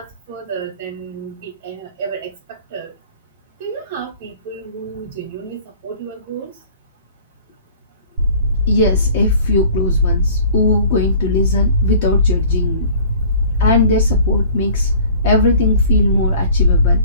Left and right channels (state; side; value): inverted; both; correlation -0.48